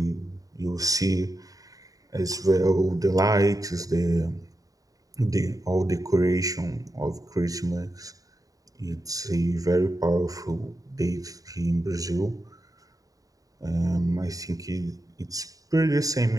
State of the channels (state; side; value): late; left; 0.17 ms